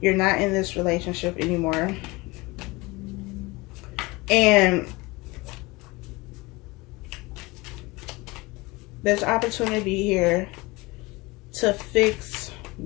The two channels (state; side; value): quieter; right; 23.2 dB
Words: You're not in this relationship anymore. And there's opportunity here to fix